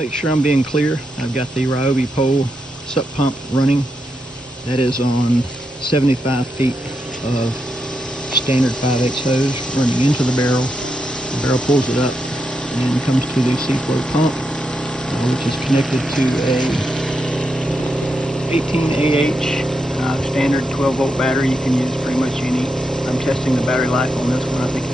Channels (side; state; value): both; normal; correlation 0.83